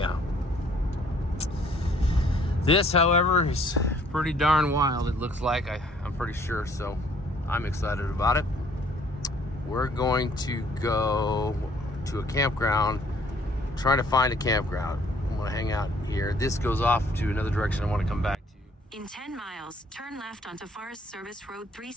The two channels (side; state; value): both; normal; correlation 0.61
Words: This, however, is pretty darn wild. It looks like, I'm pretty sure, so I'm excited about it. We're going to go to a campground, trying to find a campground. I'm gonna hang out here. This goes off to another direction I want to come back to. In 10 miles, turn left onto Forest Service Road